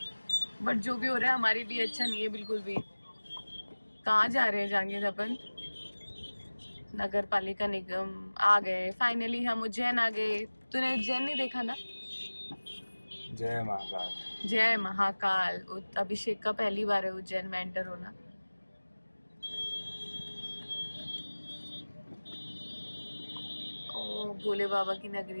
बट जो भी हो रहा है हमारे लिए अच्छा नहीं है बिल्कुल भी। कहाँ जा रहे हैं जांगिर अपन? नगर पालिका निगम आ गए फाइनली, हम उज्जैन आ गए। तूने उज्जैन नहीं देखा ना? जय महाकाल। जय महाकाल। अभिषेक का पहली बार है उज्जैन में एंटर होना। ओ भोले बाबा की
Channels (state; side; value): inverted; both; correlation -1.00